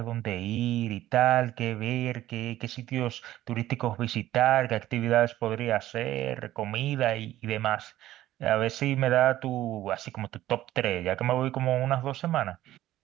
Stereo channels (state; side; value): quieter; left; 14.2 dB